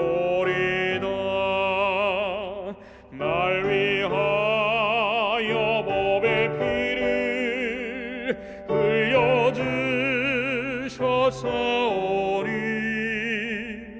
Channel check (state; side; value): identical; both; correlation 1.00